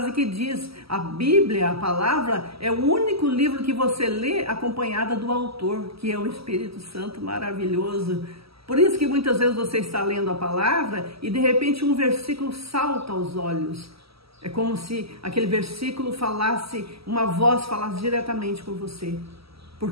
que diz, a Bíblia, a palavra, é o único livro que você lê acompanhada do autor, que é o Espírito Santo maravilhoso. Por isso que muitas vezes você está lendo a palavra e de repente um versículo salta aos olhos. É como se aquele versículo falasse, uma voz falasse diretamente com você.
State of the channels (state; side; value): late; left; 0.76 ms